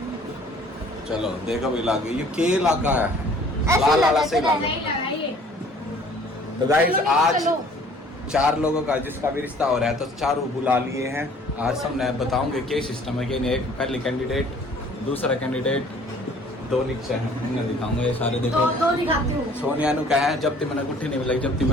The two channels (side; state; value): both; normal; correlation 0.54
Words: चलो देखो भी लागे, ये के इलाका है, लाल वाला से इलाका। तो गाइस आज 4 लोगों का जिसका भी रिश्ता हो रहा है तो 4 बुला लिए हैं। आज सब मैं बताऊंगे क्या सिस्टम है कि नहीं। एक पहले कैंडिडेट, दूसरा कैंडिडेट, 2 नीचे हैं, इन्हें दिखाऊंगा। ये सारे देखो, दो दिखाती हूँ। सोनिया नु कहा है जब तक मैंने गुट्ठी नहीं मिलाई, जब तक